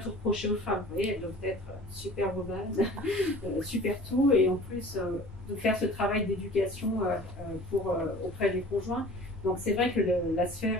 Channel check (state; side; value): normal; both; correlation 0.44